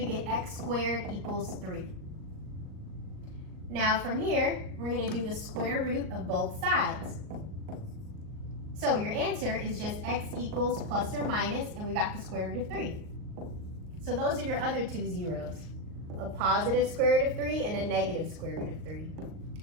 get x squared equals 3. Now from here, we're going to do the square root of both sides. So your answer is just x equals plus or minus, and we got the square root of 3. So those are your other two zeros, a positive square root of 3 and a negative square root of 3.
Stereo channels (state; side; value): late; left; 38 ms